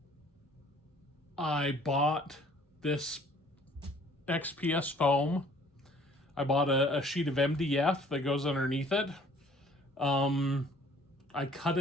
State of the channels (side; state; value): both; normal; correlation 0.56